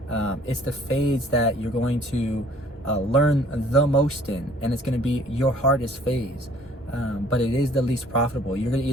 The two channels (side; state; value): both; normal; correlation 0.56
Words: It's the phase that you're going to learn the most in, and it's going to be your hardest phase. But it is the least profitable. You're